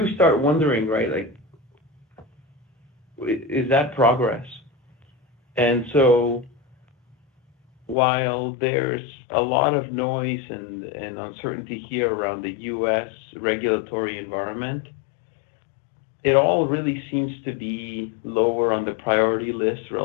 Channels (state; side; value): drops out; right; at 8.0 s